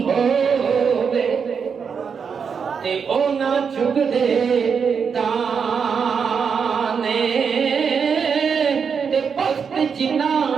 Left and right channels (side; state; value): left; quieter; 6.3 dB